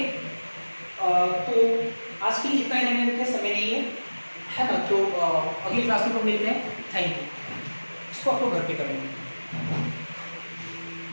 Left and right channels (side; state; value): both; inverted; correlation -1.00